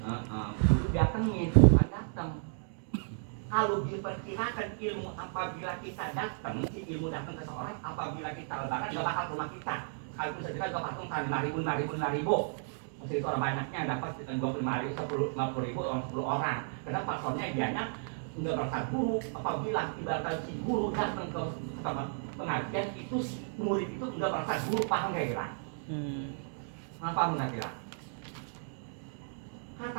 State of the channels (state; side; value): silent; left; 55 dB below the other